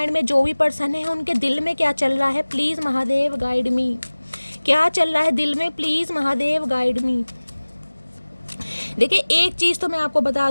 में जो भी पर्सन है उनके दिल में क्या चल रहा है, प्लीज़ महादेव गाइड मी। क्या चल रहा है दिल में, प्लीज़ महादेव गाइड मी। देखिए एक चीज़ तो मैं आपको बता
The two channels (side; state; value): both; inverted; correlation -1.00